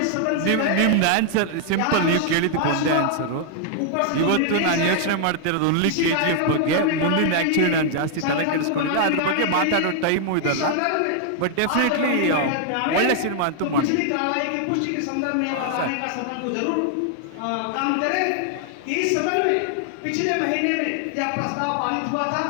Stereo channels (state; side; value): different; both; correlation 0.00